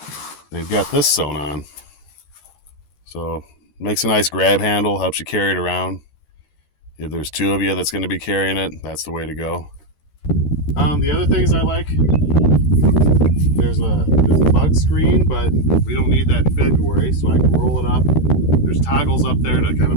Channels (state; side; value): late; right; 13 ms